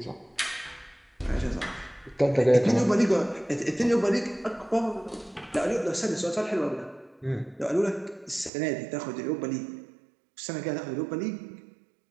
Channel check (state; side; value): drops out; left; at 8.5 s